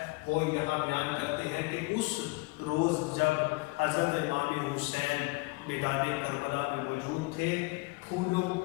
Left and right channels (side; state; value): right; quieter; 25.5 dB